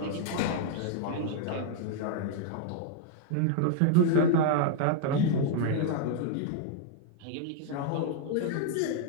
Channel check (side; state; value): both; different; correlation 0.00